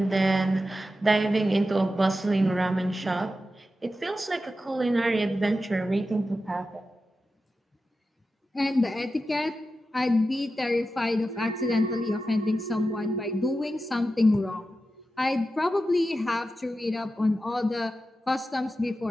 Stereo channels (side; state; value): both; normal; correlation 0.91